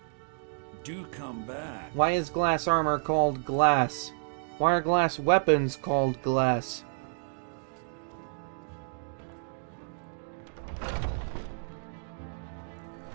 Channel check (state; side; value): silent; left; digital silence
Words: Do come back. Why is glass armor called glass? Why are glass weapons called glass?